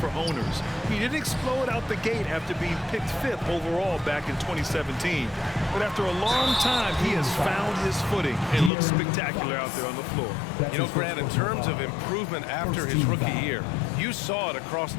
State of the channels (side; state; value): right; drops out; at 8.7 s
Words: owners. He didn't explode out the gate after being picked 5th overall back in 2017. But after a long time, he has found his footing and looks spectacular out there on the floor. You know, Grant, in terms of improvement after his rookie year, you saw it across